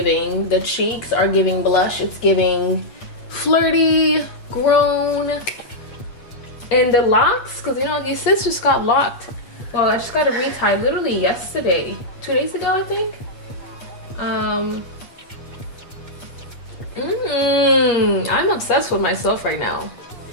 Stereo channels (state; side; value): late; right; 8.4 ms